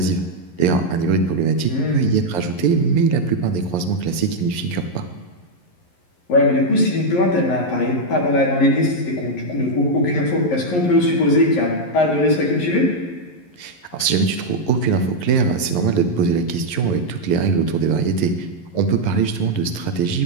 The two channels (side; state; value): right; late; 11 ms